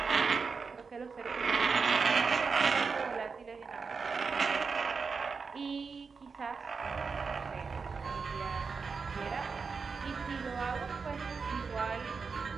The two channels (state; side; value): quieter; left; 5.0 dB